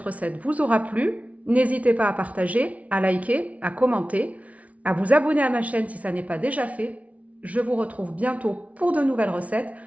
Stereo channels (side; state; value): left; late; 0.067 ms